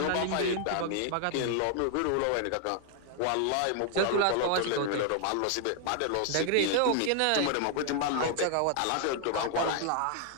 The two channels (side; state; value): both; different; correlation 0.00